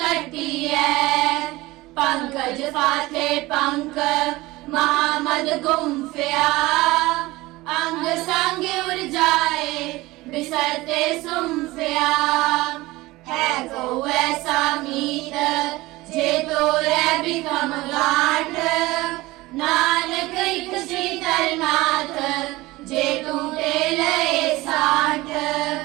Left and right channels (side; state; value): left; quieter; 19.9 dB